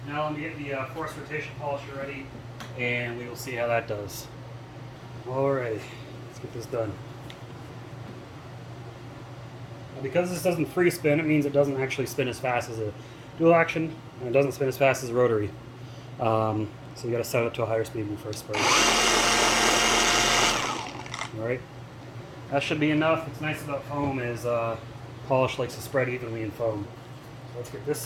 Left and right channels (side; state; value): both; identical; correlation 1.00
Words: Now let me get the force rotation polisher ready, and we will see how that does. Alright, let's get this done. Now because this doesn't free spin, it means it doesn't actually spin as fast as a dual action, and it doesn't spin as fast as a rotary. So you got to set it up to a higher speed when you first spray. Alright, that should be enough. What's nice about foam is polish likes to spread evenly in foam. So let's get this